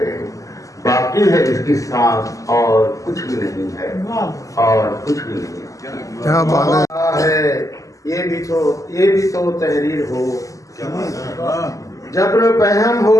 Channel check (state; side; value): late; right; 0.16 ms